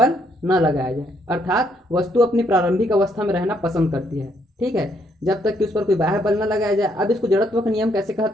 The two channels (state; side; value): normal; both; correlation 0.71